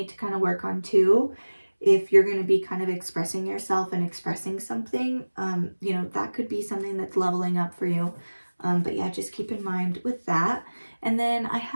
to kind of work on too. If you're going to be kind of expressing yourself and expressing something, you know, that could be something that's leveling up for you. But yeah, just keep in mind with that. And then I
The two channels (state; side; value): inverted; both; correlation -1.00